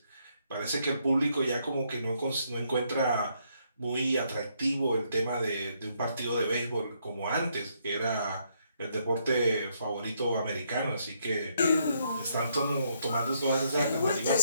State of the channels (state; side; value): inverted; both; correlation -0.73